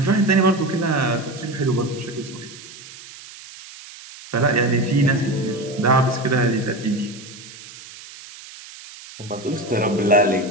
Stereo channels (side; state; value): right; noise; hiss, 17 dB below the sound